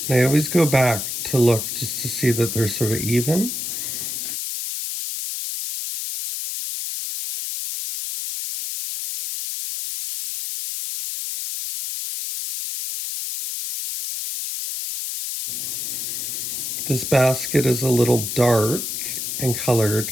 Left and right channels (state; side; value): noise; left; hiss, 4 dB below the sound